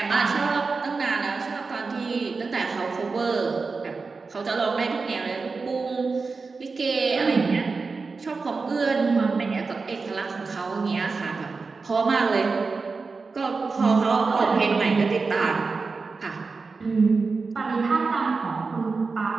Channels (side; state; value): left; quieter; 4.4 dB